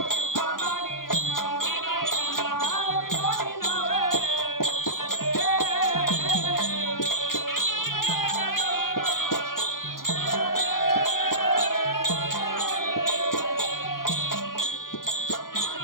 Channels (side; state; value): right; late; 0.91 ms